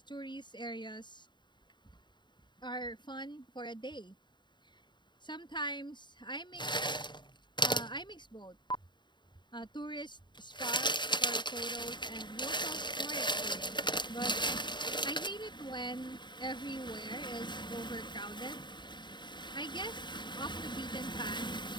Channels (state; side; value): late; right; 0.22 ms